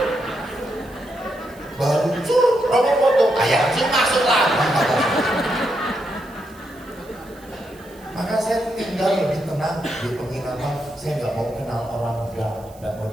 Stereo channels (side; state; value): right; noise; hiss, 26 dB below the sound